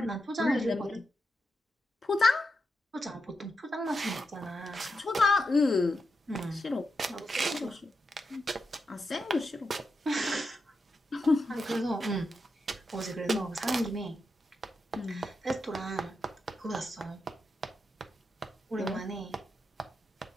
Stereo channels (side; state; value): both; normal; correlation 0.86